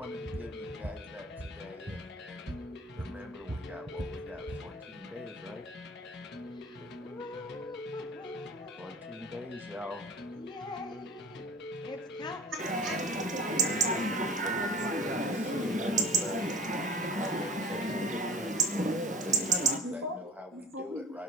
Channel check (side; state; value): both; normal; correlation 0.41